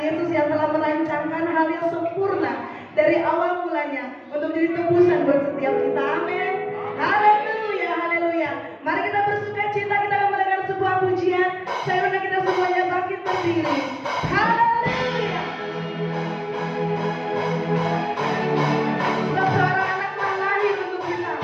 yang telah merancangkan hal yang sempurna dari awal mulanya untuk menjadi tebusan buat setiap kita. Amin. Haleluya, haleluya. Mari kita bersuka cita, kita akan mendengar sebuah pujian. Saya undang kita semuanya bangkit berdiri. Haleluya. Sebab seorang anak telah lahir untuk kita,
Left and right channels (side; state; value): both; identical; correlation 1.00